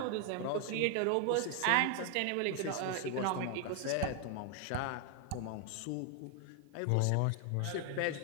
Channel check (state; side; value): different; both; correlation 0.00